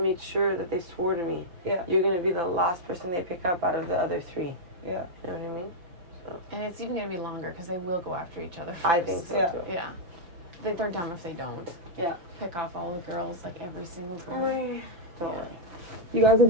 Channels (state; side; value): late; left; 5.7 ms